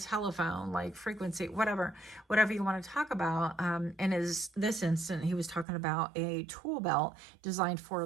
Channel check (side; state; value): left; drops out; at 5.7 s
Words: telephone, like frequency, whatever you want to talk about. And this instant, he was talking about a tool belt designed for